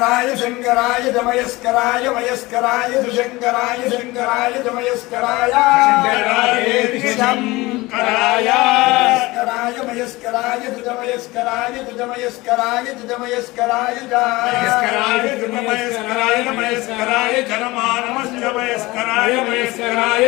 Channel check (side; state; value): right; quieter; 21.1 dB